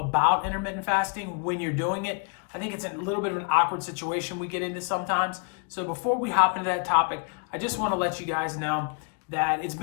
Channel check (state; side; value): quieter; right; 37.7 dB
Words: intermittent fasting when you're doing it. I think it's a little bit of an awkward situation we get into sometimes. So before we hop into that topic, I just want to let you guys know that it's